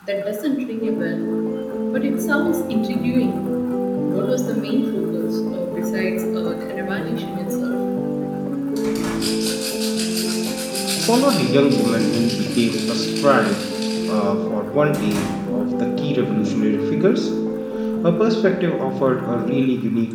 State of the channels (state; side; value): identical; both; correlation 1.00